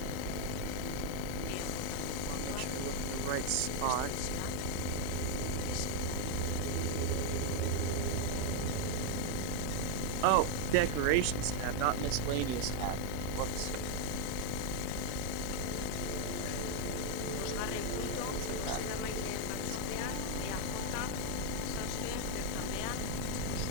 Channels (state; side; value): different; both; correlation 0.00